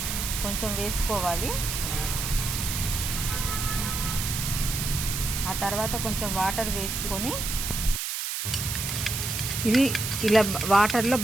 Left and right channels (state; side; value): noise; right; hiss, 3 dB below the sound